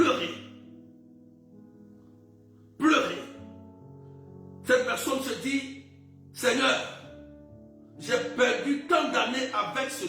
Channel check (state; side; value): identical; both; correlation 1.00